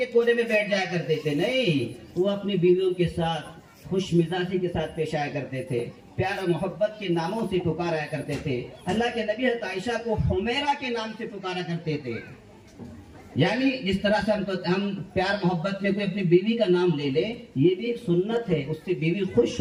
کونے میں بیٹھ جایا کرتے تھے، نہیں، وہ اپنی بیویوں کے ساتھ خوش مزاجی کے ساتھ پیش آیا کرتے تھے، پیار و محبت کے ناموں سے پکارا کرتے تھے۔ اللہ کے نبی حضرت عائشہ کو حمیرہ کے نام سے پکارا کرتے تھے، یعنی جس طرح سے ہم پیار محبت میں کوئی اپنی بیوی کا نام لے لے، یہ بھی ایک سنت ہے، اس سے بیوی خوش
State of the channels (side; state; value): both; identical; correlation 1.00